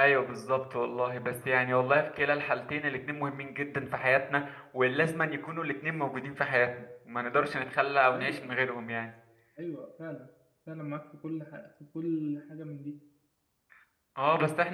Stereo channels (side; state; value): both; identical; correlation 1.00